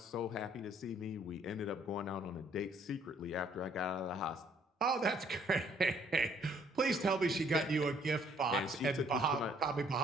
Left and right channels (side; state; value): both; normal; correlation 0.63